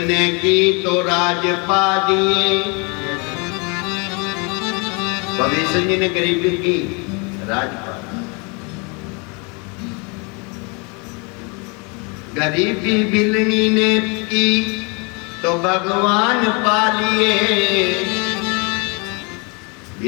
की तो राज पा दिए। भविष्य जी ने गरीबी की, राजपाल। गरीबी बिलनी ने की तो भगवान पा लिए।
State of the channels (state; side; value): quieter; right; 31.9 dB